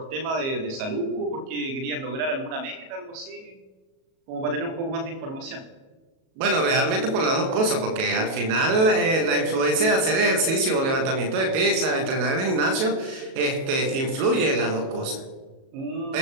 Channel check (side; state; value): left; late; 37 ms